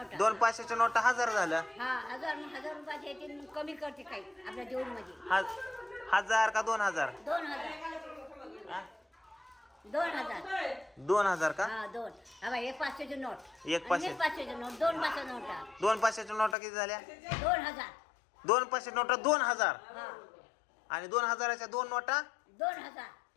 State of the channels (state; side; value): drops out; right; at 16.6 s